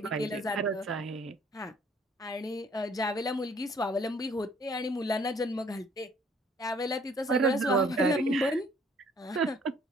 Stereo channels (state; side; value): normal; both; correlation 0.60